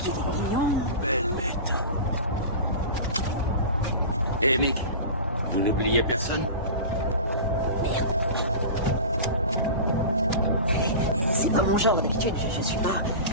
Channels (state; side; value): inverted; both; correlation -0.30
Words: est mignon. Belle bête. Et Mick, vous n'oubliez personne? C'est pas mon genre d'habitude, je suis pas...